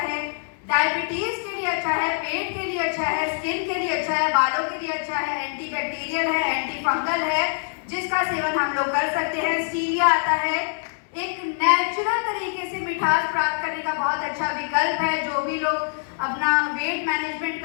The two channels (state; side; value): silent; right; 62 dB below the other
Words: है। डायबिटीज के लिए अच्छा है, पेट के लिए अच्छा है, स्किन के लिए अच्छा है, बालों के लिए अच्छा है, एंटीबैक्टीरियल है, एंटी फंगल है, जिसका सेवन हम लोग कर सकते हैं। स्टीविया आता है, एक नेचुरल तरीके से मिठास प्राप्त करने का बहुत अच्छा विकल्प है। जो भी लोग अपना वेट मैनेजमेंट